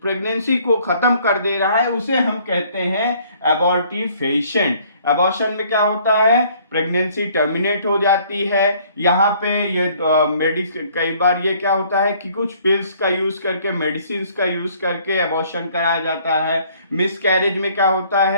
को खत्म कर दे रहा है, उसे हम कहते हैं एबॉर्टिफेशिएंट। एबॉर्शन में क्या होता है? प्रेगनेंसी टर्मिनेट हो जाती है। यहाँ पे ये मेडिसिन, कई बार ये क्या होता है कि कुछ पिल्स का यूज करके, मेडिसिन का यूज करके एबॉर्शन कराया जाता है। मिसकैरेज में क्या होता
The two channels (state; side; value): inverted; both; correlation -0.60